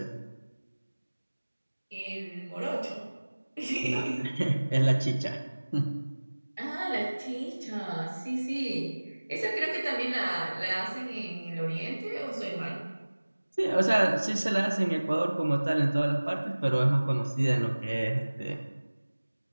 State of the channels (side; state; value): both; inverted; correlation -1.00